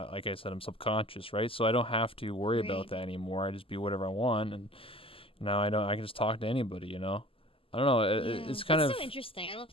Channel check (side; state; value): right; late; 0.26 ms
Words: I said, I'm subconscious, right? So I don't have to worry about Right. that anymore. I just be whatever I want, and now I don't. I can just talk to anybody, you know. I don't know. It's kind That's of so interesting. I love